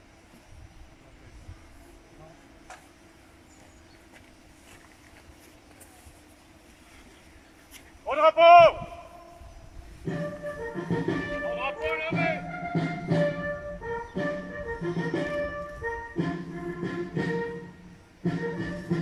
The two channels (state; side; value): identical; both; correlation 1.00